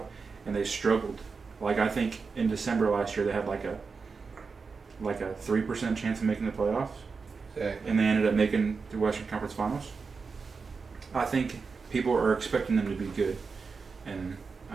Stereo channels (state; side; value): quieter; left; 4.9 dB